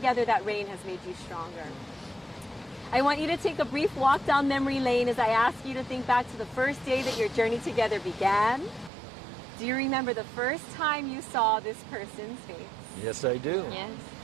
that rain has made you stronger. I want you to take a brief walk down memory lane as I ask you to think back to the first day that your journey together began. Do you remember the first time you saw this person's face? Yes, I do. Yes.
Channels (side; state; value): left; drops out; at 8.9 s